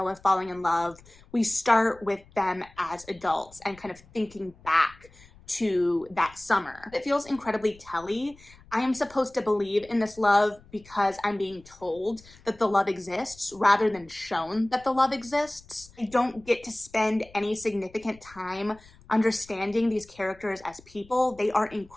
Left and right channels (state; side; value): noise; left; rumble, 25 dB below the sound